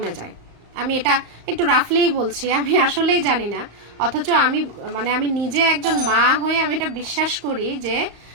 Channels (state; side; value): late; left; 35 ms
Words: যায়। আমি এটা একটু রাফলিই বলছি, আমি আসলেই জানি না। অথচ আমি নিজে একজন মা হয়ে আমি এটা বিশ্বাস করি যে